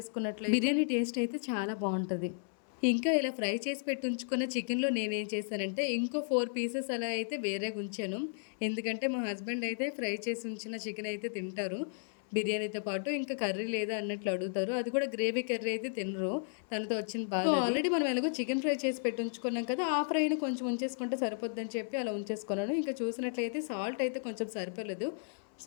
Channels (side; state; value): right; silent; 55 dB below the other